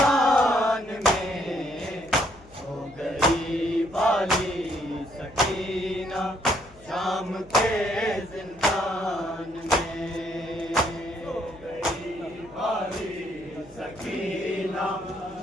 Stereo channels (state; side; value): noise; left; hum, 24 dB below the sound